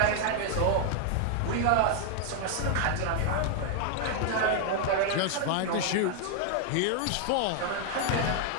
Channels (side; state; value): both; different; correlation 0.00